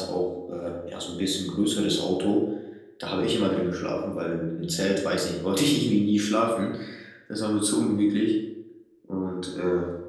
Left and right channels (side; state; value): both; identical; correlation 1.00